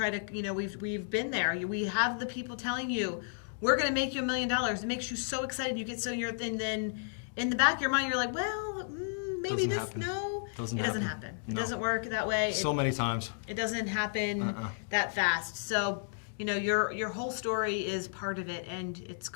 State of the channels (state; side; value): silent; right; digital silence